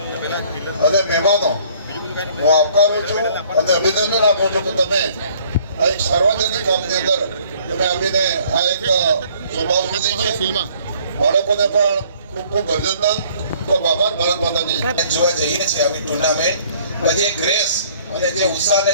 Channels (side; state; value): both; inverted; correlation -0.58